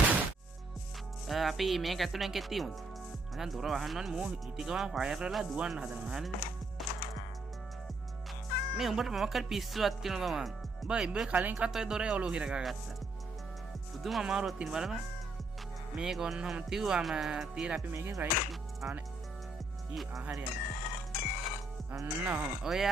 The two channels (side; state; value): left; quieter; 3.0 dB